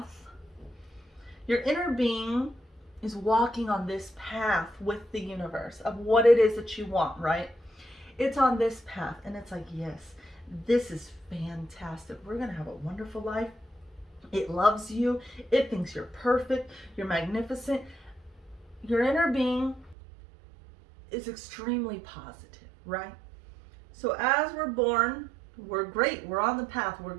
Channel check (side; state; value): left; drops out; at 20.0 s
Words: Your inner being is walking on this path with the universe of what it is that you want, right? It's on this path and it's like, yes, this is fantastic. We're going to have a wonderful life. It loves you. It thinks you're perfect. You're magnificent. Your inner being is extremely positive, right? So as we're born, we're great. We're on the path. We're